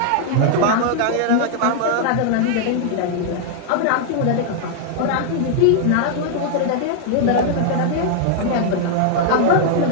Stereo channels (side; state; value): both; different; correlation 0.00